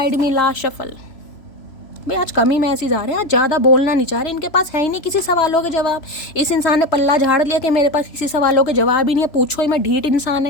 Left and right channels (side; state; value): right; late; 3.0 ms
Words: me. Last shuffle. भाई आज कम ही मैसेज आ रहे हैं, आज ज़्यादा बोलना नहीं चाह रहे। इनके पास है ही नहीं किसी सवालों के जवाब। इस इंसान ने पल्ला झाड़ लिया कि मेरे पास किसी सवालों के जवाब ही नहीं है। पूछो ही मैं, ढीठ इंसान